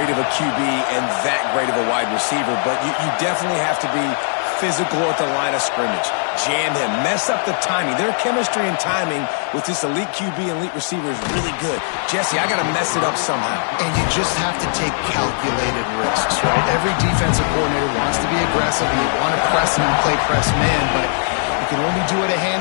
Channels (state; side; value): silent; right; digital silence